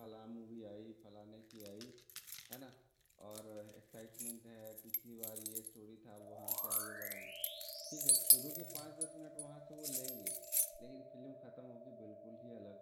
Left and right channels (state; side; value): identical; both; correlation 1.00